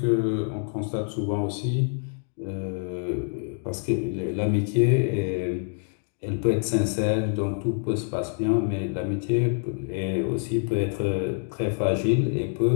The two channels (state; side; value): silent; right; 56 dB below the other